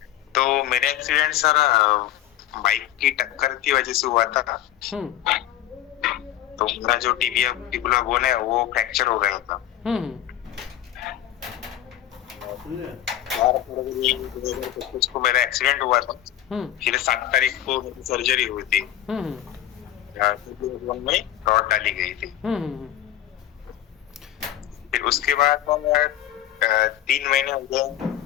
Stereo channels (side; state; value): right; quieter; 12.4 dB